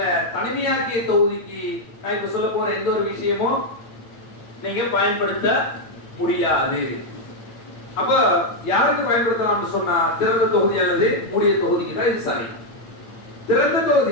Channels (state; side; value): late; right; 9.2 ms